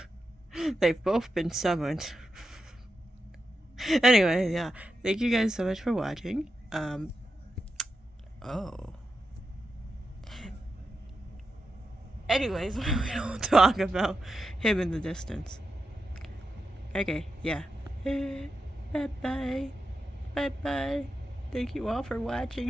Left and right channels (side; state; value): both; normal; correlation 0.88